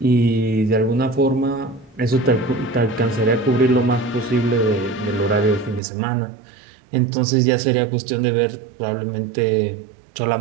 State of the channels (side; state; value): left; drops out; at 5.8 s